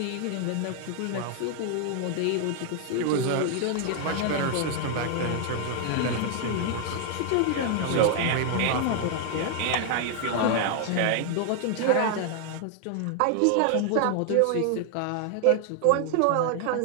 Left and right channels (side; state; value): both; different; correlation 0.00